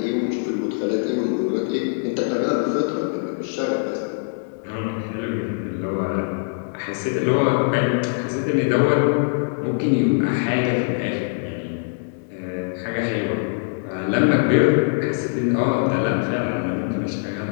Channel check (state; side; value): silent; right; digital silence